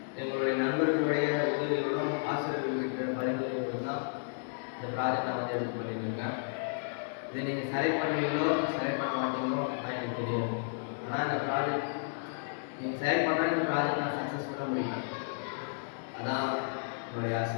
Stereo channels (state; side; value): silent; right; digital silence